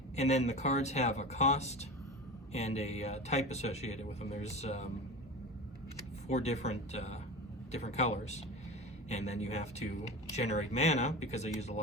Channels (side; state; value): both; normal; correlation 0.30